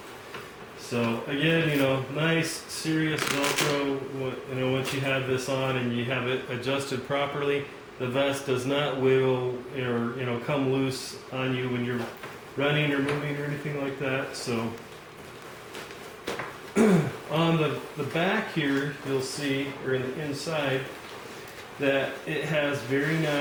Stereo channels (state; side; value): identical; both; correlation 1.00